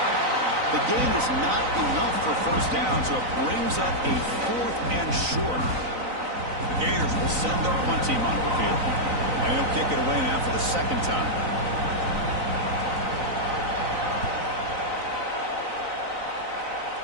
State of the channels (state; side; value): late; left; 3.9 ms